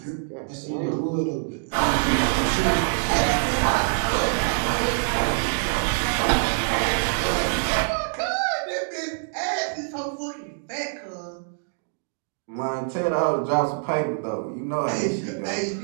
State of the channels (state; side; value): silent; left; digital silence